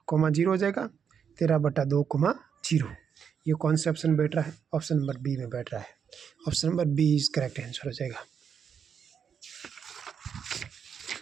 कॉमा 0 हो जाएगा 13/2, 0। ये कौन से ऑप्शन बैठ रहा है, ऑप्शन नंबर बी में बैठ रहा है। Option number B is correct answer हो जाएगा।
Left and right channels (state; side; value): quieter; left; 7.3 dB